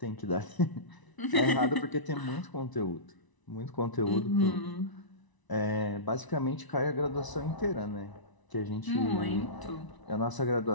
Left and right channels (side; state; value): right; late; 1.0 ms